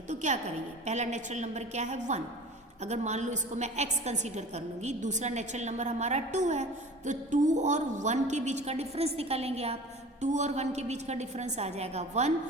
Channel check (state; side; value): normal; both; correlation 0.40